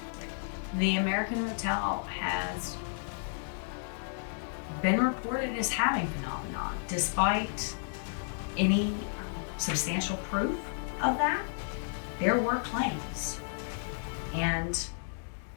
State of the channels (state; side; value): silent; right; digital silence